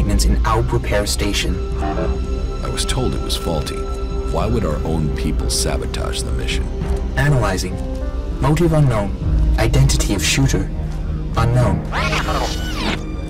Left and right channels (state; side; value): identical; both; correlation 1.00